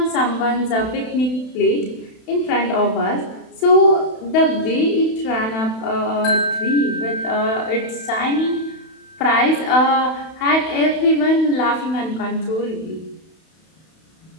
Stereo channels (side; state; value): right; late; 32 ms